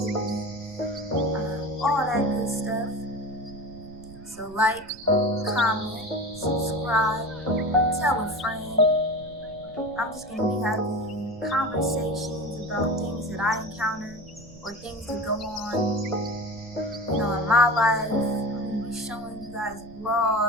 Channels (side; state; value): right; noise; rumble, 19 dB below the sound